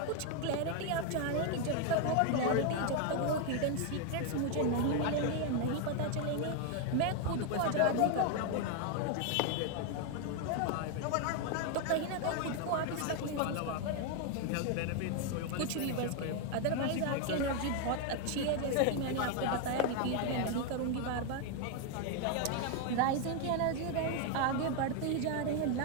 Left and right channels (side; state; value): both; different; correlation 0.01